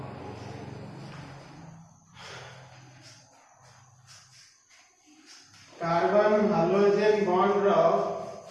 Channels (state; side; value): identical; both; correlation 1.00